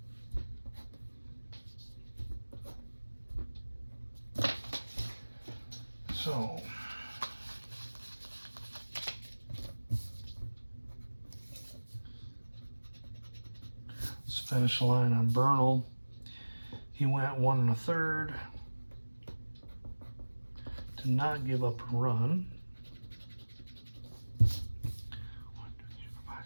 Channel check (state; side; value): inverted; both; correlation -1.00